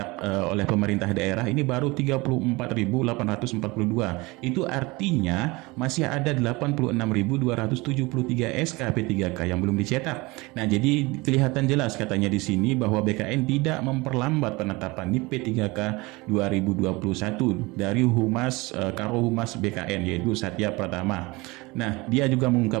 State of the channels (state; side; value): quieter; left; 23.5 dB